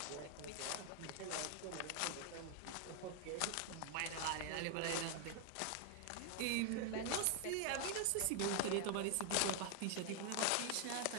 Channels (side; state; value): both; different; correlation 0.00